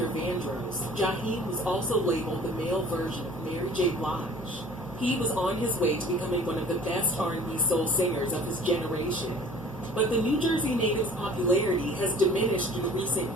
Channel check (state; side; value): normal; both; correlation 0.48